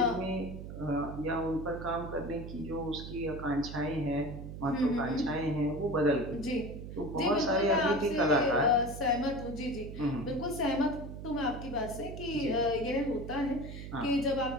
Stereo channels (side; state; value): right; noise; hum, 9 dB below the sound